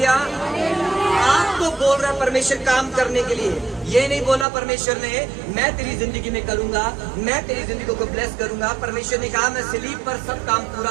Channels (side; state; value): left; drops out; at 4.5 s